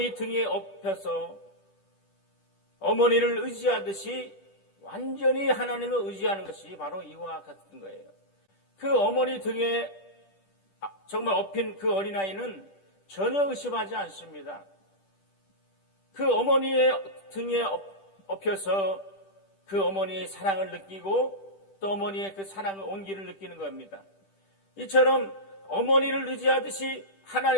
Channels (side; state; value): right; late; 10 ms